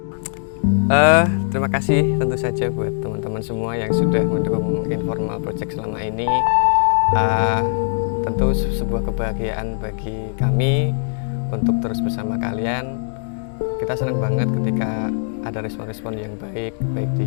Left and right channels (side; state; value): right; silent; digital silence